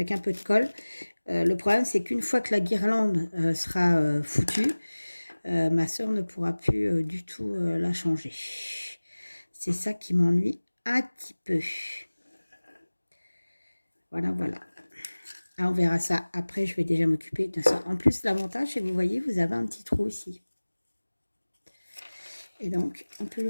un peu de colle, le problème c'est qu'une fois que la guirlande sera foutue, ma soeur ne pourra plus du tout la changer. C'est ça qui m'ennuie un petit peu. Voilà. Ah, on verra ça après, je vais déjà m'occuper de ça. En plus, l'avantage, c'est que vous voyez, vous avez un petit trou ici. Et donc, on peut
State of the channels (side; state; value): both; inverted; correlation -1.00